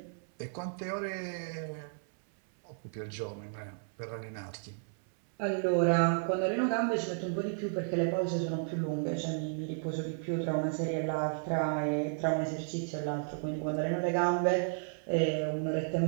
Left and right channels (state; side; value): silent; left; 56 dB below the other